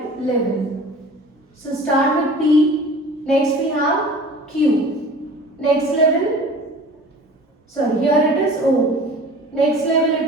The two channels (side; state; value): both; normal; correlation 0.42